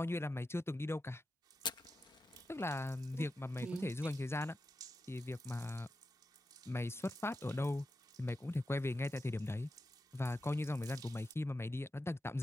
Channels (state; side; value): normal; both; correlation 0.90